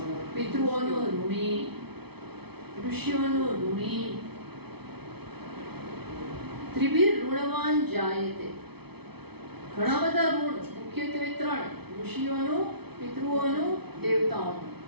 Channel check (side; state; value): left; late; 0.98 ms